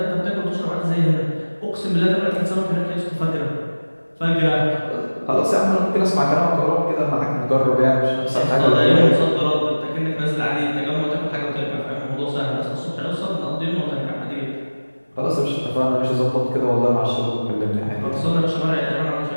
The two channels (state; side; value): inverted; both; correlation -1.00